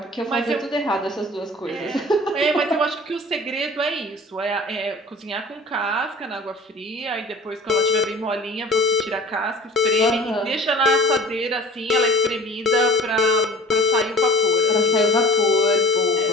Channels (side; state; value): both; normal; correlation 0.43